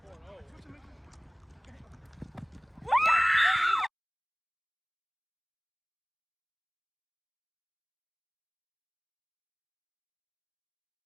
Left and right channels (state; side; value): identical; both; correlation 1.00